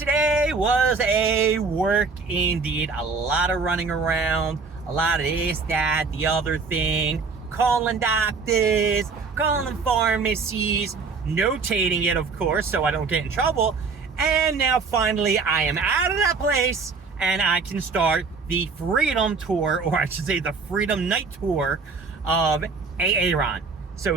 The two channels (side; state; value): left; quieter; 4.7 dB